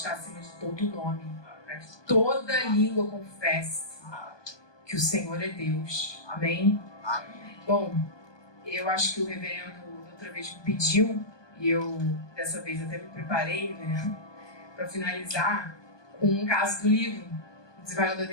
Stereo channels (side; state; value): right; late; 1.2 ms